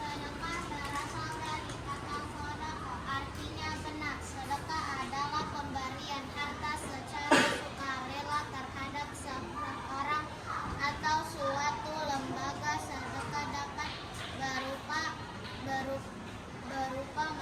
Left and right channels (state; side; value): identical; both; correlation 1.00